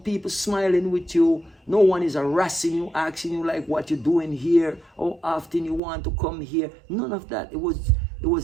smiling with you, no one is harassing you, asking you like what you're doing here, how often you want to come here, none of that. It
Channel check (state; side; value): drops out; left; at 5.8 s